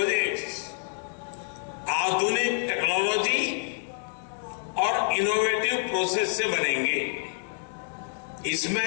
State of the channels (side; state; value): right; silent; digital silence